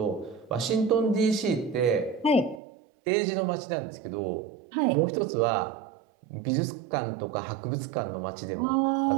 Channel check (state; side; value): drops out; left; at 2.6 s